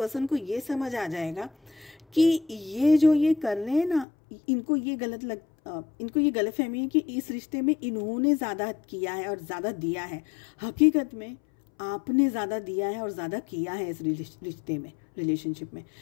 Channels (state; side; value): drops out; right; at 4.0 s